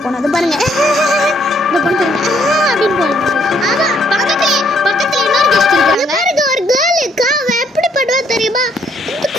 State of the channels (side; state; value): both; normal; correlation 0.69